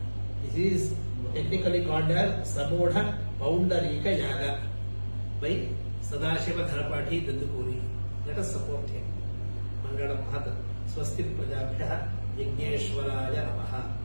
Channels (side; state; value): both; inverted; correlation -1.00